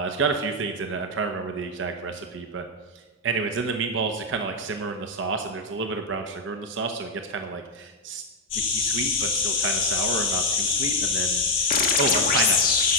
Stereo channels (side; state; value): both; normal; correlation 0.01